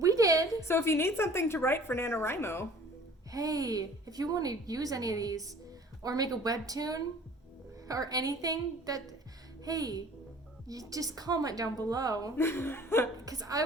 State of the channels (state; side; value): normal; both; correlation 0.49